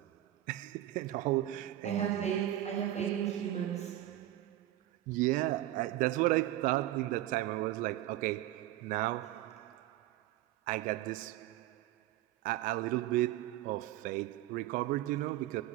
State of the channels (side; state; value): left; quieter; 14.4 dB